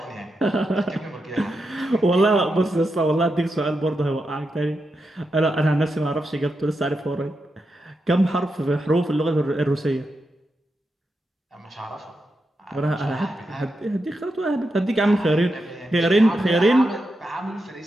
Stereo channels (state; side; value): normal; both; correlation 0.87